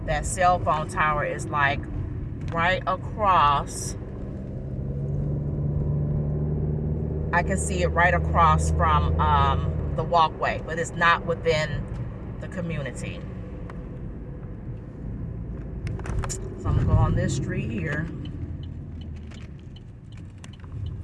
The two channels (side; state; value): both; identical; correlation 1.00